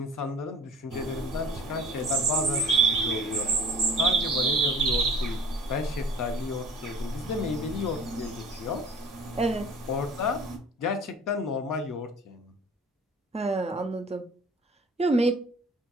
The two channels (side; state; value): both; normal; correlation 0.47